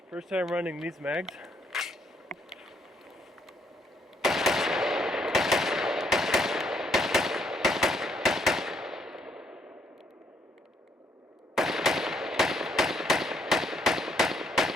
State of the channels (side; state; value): both; normal; correlation 0.70